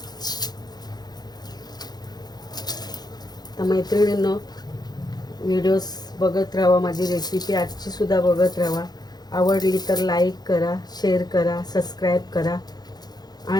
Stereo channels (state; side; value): late; right; 0.19 ms